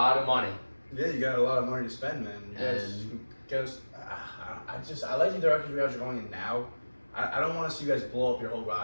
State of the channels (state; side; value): inverted; both; correlation -1.00